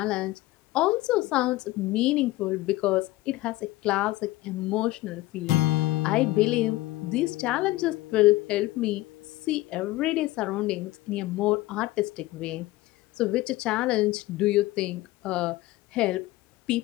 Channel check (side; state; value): right; quieter; 18.1 dB